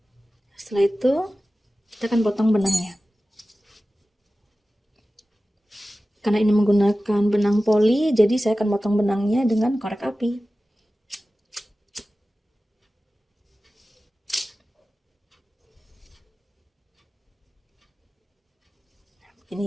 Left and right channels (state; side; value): normal; both; correlation 0.96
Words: Setelah itu, kita akan potong benangnya. Karena ini menggunakan benang poli, jadi saya akan potong benangnya dengan korek api. Ini